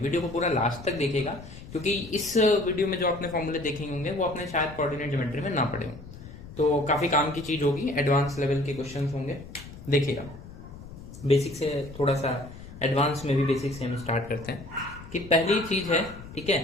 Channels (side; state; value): left; noise; rumble, 15 dB below the sound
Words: को पूरा लास्ट तक देखेगा, क्योंकि इस वीडियो में जो आपने फॉर्मूले देखेंगे होंगे वो आपने शायद कोऑर्डिनेट ज्योमेट्री में ना पढ़े हों, तो काफी काम की चीज होगी। एडवांस लेवल के क्वेश्चन होंगे, देखिएगा। बेसिक से थोड़ा सा एडवांस में भी बेसिक से हम स्टार्ट करते हैं कि पहली चीज है, ठीक है,